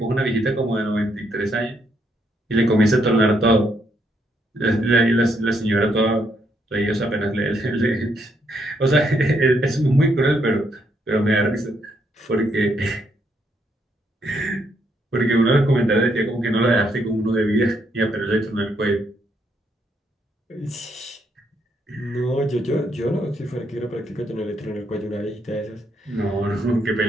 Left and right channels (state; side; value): normal; both; correlation 0.75